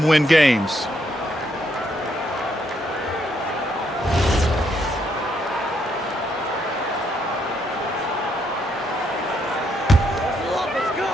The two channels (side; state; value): both; normal; correlation 0.74